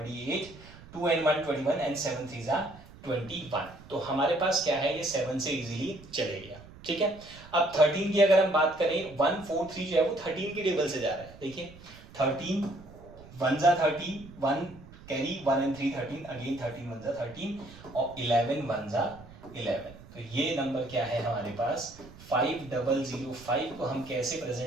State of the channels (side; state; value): right; noise; rumble, 19 dB below the sound